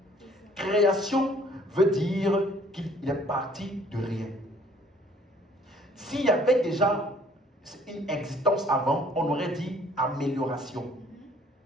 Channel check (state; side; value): normal; both; correlation 0.59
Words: Création veut dire qu'il est parti de rien. S'il y avait déjà une existence avant, on aurait dit amélioration.